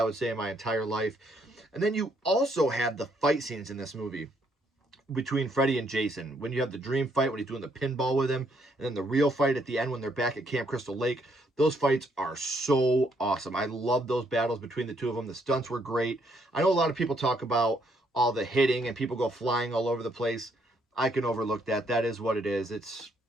would say in my entire life. And then you also have the fight scenes in this movie. between Freddy and Jason. When you have the dream fight, when he's doing the pinball with him, and then the real fight at the end when they're back at Camp Crystal Lake, those fights are so awesome. I love those battles between the two of them. The stunts were great. I know a lot of people talk about all the hitting and people go flying all over the place. I can overlook that. That is what it is. It's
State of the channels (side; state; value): both; normal; correlation 0.71